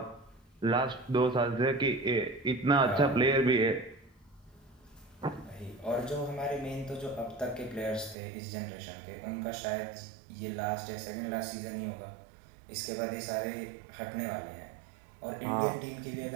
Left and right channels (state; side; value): drops out; left; at 8.2 s